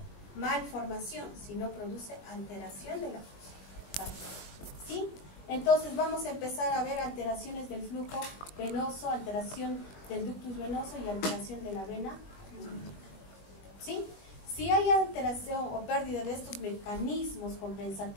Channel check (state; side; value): late; right; 21 ms